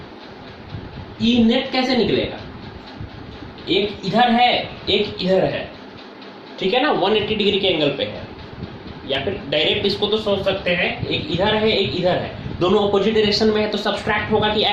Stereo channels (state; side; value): identical; both; correlation 1.00